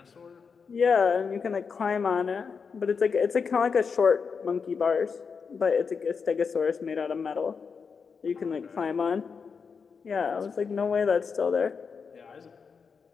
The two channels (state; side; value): quieter; right; 5.7 dB